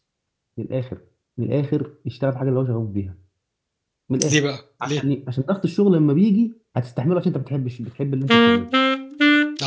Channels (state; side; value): identical; both; correlation 1.00